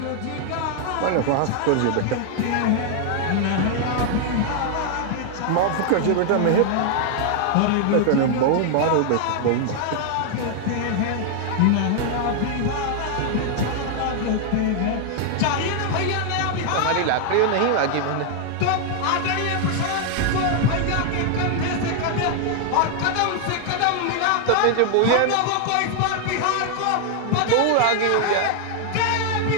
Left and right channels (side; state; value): both; different; correlation 0.00